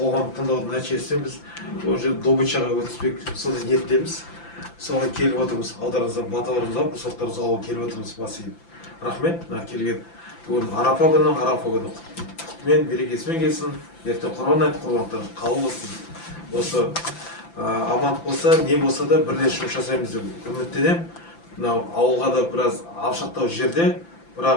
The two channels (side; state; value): right; late; 5.9 ms